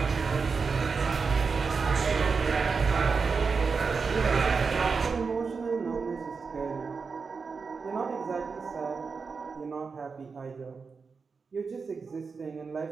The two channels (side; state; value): left; quieter; 5.0 dB